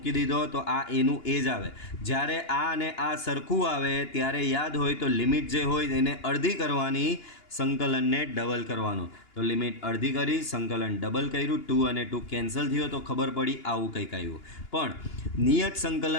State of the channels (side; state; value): right; late; 2.9 ms